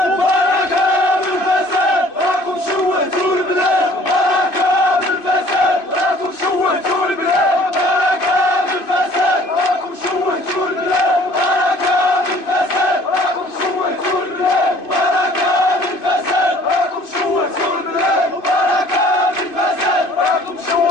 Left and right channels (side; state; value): right; late; 2.5 ms